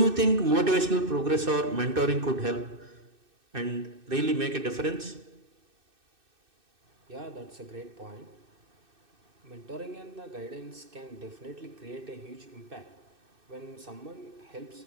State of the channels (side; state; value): left; late; 2.6 ms